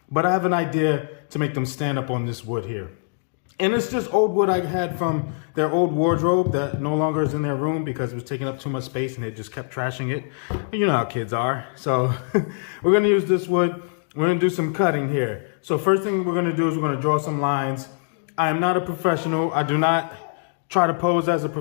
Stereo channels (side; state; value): right; silent; digital silence